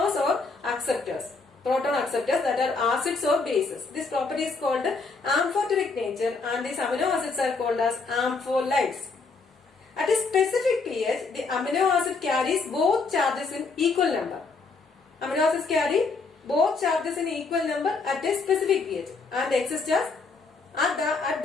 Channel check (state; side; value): quieter; right; 4.2 dB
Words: or acceptors. Proton acceptors, that are acids or bases. This property is called amphoteric nature, and these amino acids are called as ampholites. At a specific pH, the amino acid carries both charges in equal number. Amino acids carry both charges in equal number at a specific pH and exist as at